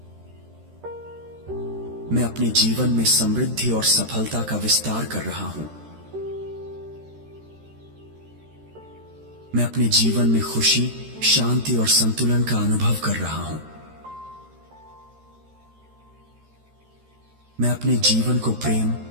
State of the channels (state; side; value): late; left; 13 ms